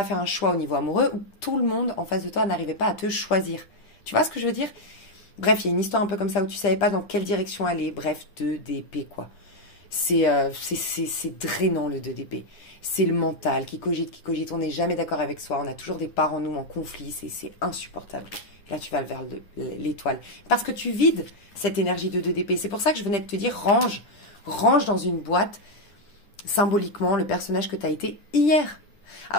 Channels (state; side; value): late; right; 10 ms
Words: faire un choix au niveau amoureux, ou tout le monde en face de toi n'arrivait pas à te choisir. Tu vois ce que je veux dire? Bref, il y a une histoire un peu comme ça où tu ne savais pas dans quelle direction aller. Bref, 2 d'épée, quoi. C'est drainant, le 2 d'épée. C'est le mental qui cogite, qui cogite. On n'est jamais d'accord avec soi. On a toujours des parts en nous en conflit. C'est insupportable. Là, tu vas vers l'étoile. Parce que tu vides cette énergie de 2 d'épée. C'est pour ça que je venais de te dire, range. Range dans une boîte, symboliquement, le personnage que tu as été hier.